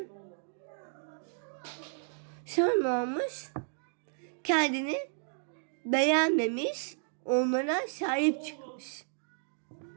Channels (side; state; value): left; silent; digital silence